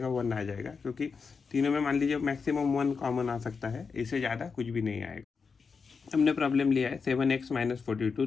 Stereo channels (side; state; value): right; quieter; 5.3 dB